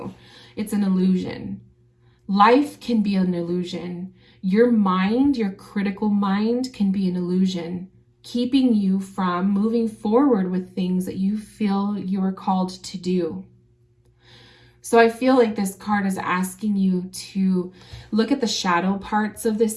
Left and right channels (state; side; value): identical; both; correlation 1.00